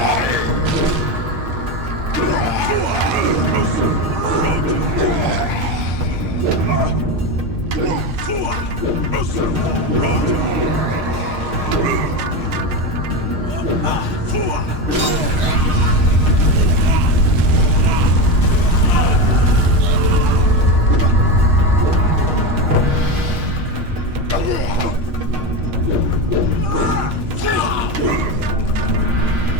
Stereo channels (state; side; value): late; left; 6.5 ms